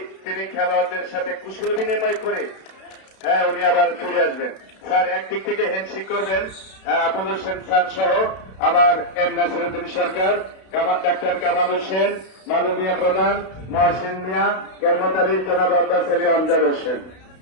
তিনি খেলোয়াড়দের সাথে কুশল বিনিময় করে উনি আবার ফিরে আসবেন। স্যার একদিক থেকে হ্যান্ডশেক করবেন আবুল হোসেন খান সহ আমার এম নাসিরুদ্দিন সরকার, ডাক্তার কামাল হোসেন, মালুমিয়া প্রধান, মহসিন মিয়া, কেরমত আলী, জনাব আব্বাস আলী, আমজাদ হোসেন।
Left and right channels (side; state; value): right; late; 32 ms